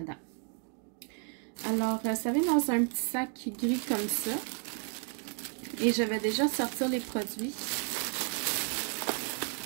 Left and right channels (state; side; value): quieter; left; 37.3 dB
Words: Alors, ça vient dans un petit sac gris comme ça. Et je vais déjà sortir les produits